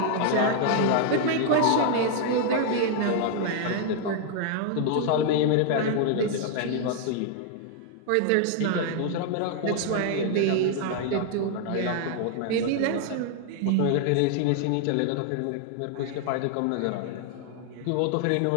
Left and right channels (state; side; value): different; both; correlation 0.00